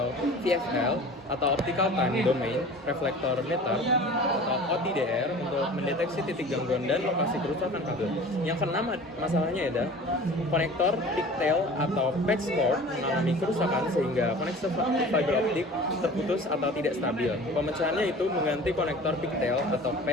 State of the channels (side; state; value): both; normal; correlation 0.41